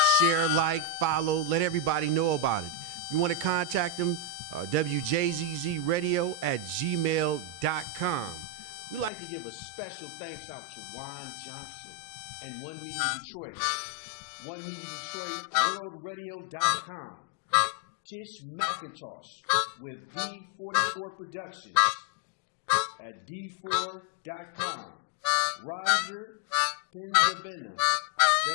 like, follow, let everybody know about it. If you want to contact them, WJZZradio@gmail.com. We'd like to give a special thanks out to Juan Johnson and One Media Detroit, One Media Detroit, worldradio.com, Tish McIntosh with D44 Productions at D4.com, Roger Penzabena,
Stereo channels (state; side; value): drops out; right; at 9.1 s